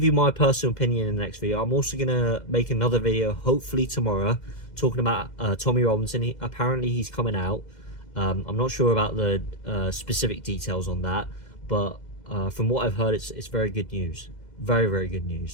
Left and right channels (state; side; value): late; right; 2.0 ms